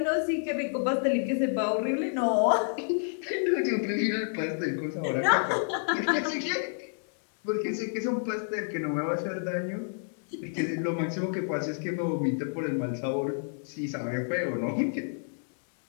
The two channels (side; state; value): right; silent; 58 dB below the other